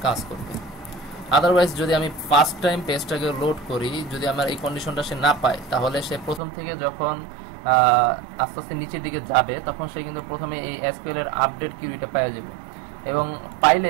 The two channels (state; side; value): drops out; left; at 6.4 s